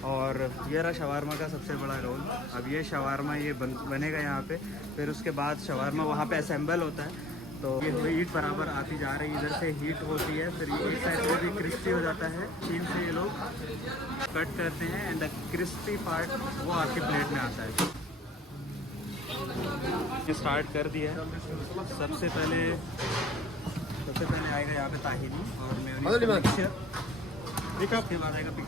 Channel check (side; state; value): both; normal; correlation 0.51